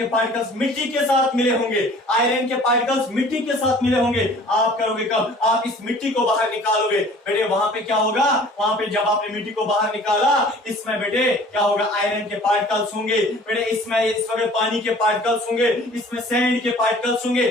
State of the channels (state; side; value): normal; both; correlation 0.49